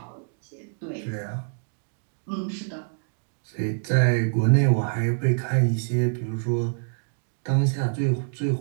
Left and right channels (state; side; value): silent; left; digital silence